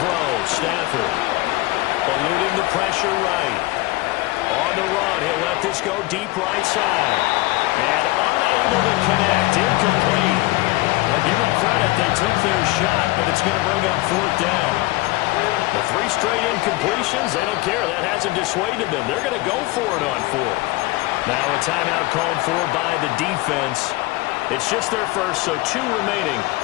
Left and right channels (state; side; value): quieter; right; 20.5 dB